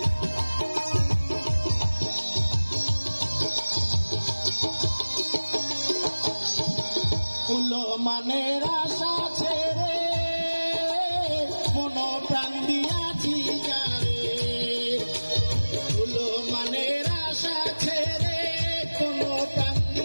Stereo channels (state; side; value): inverted; both; correlation -1.00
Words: ফুল মানের আশা ছেড়ে মন প্রাণ দিয়াছি যারে। ফুল মানের আশা ছেড়ে কোন প্রাণ